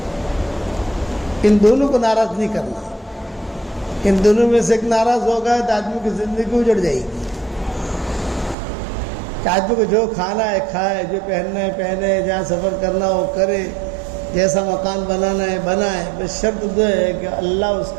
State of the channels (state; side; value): drops out; left; at 8.6 s